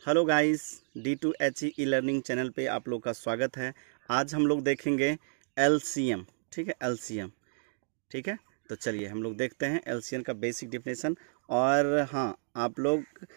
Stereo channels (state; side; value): silent; left; digital silence